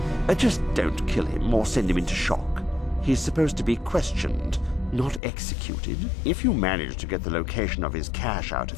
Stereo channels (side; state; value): right; drops out; at 5.2 s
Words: Just don't kill him or send him into shock. He's supposed to be questioned, not executed. If you manage to get the location of his cache out